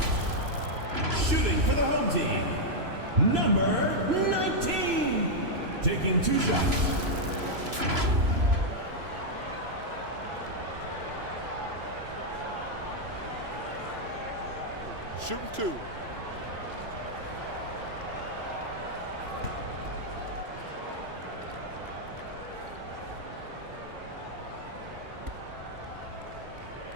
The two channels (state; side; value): late; left; 3.0 ms